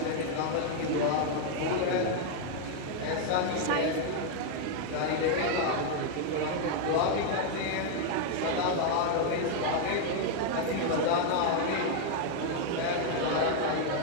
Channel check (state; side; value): different; both; correlation 0.00